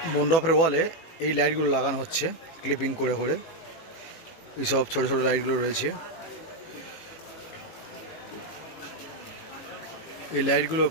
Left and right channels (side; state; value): right; late; 18 ms